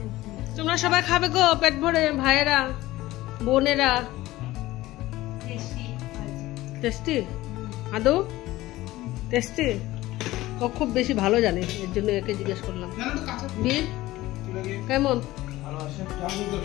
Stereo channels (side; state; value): right; quieter; 17.2 dB